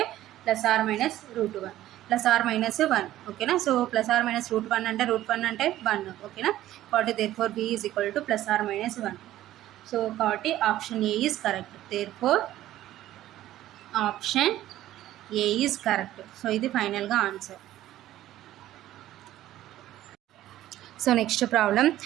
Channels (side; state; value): left; quieter; 14.0 dB